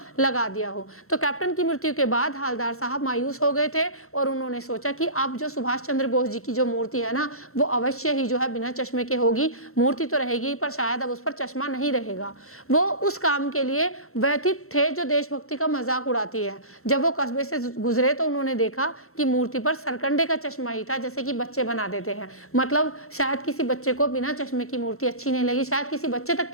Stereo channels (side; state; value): right; late; 0.63 ms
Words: लगा दिया हो। तो कैप्टन की मृत्यु के बाद हवलदार साहब मायूस हो गए थे और उन्होंने सोचा कि अब जो सुभाष चंद्र बोस जी की जो मूर्ति है ना वो अवश्य ही जो है बिना चश्मे के होगी। मूर्ति तो रहेगी पर शायद अब उस पर चश्मा नहीं रहेगा। वो उस काम के लिए व्यथित थे जो देशभक्ति का मजाक उड़ाती है। जब वो कस्बे से गुजरे तो उन्होंने देखा कि मूर्ति पर सरकंडे का चश्मा ही था, जैसे कि बच्चे बना देते हैं। मतलब शायद किसी बच्चे को बिना चश्मे की मूर्ति अच्छी नहीं लगी, शायद किसी बच्चे तक